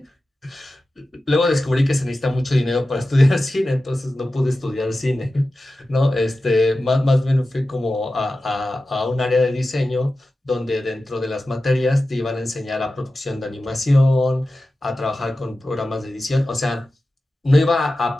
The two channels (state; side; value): normal; both; correlation 0.94